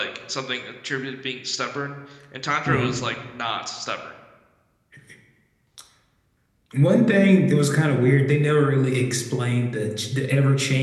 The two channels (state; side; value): identical; both; correlation 1.00